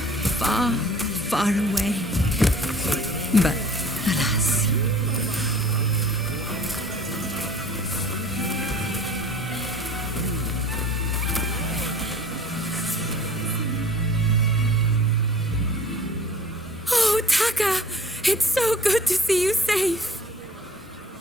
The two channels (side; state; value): both; normal; correlation 0.48